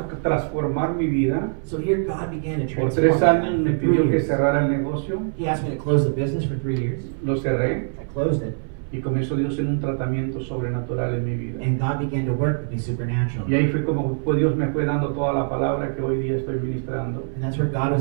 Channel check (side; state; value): left; silent; 62 dB below the other